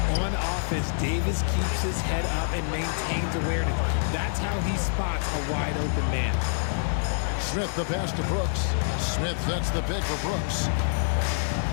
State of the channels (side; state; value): right; silent; digital silence